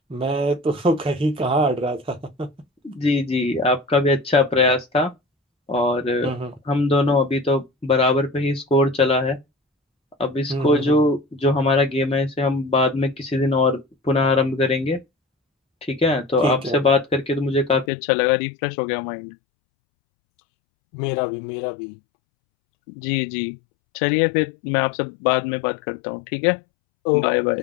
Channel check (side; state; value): right; drops out; at 17.9 s